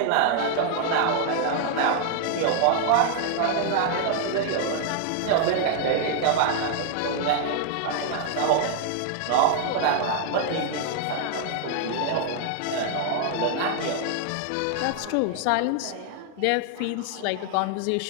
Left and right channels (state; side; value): different; both; correlation 0.00